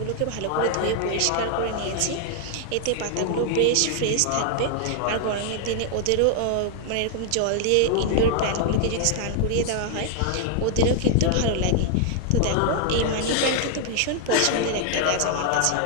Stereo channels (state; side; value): different; both; correlation 0.00